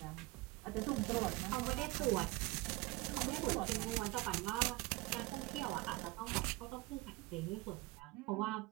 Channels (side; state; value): left; quieter; 21.2 dB